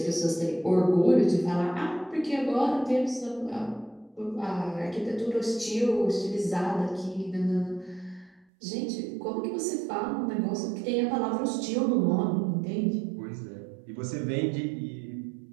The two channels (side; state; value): left; drops out; at 8.5 s